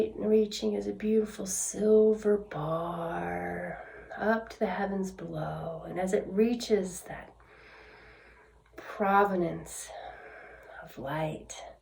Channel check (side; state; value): both; identical; correlation 1.00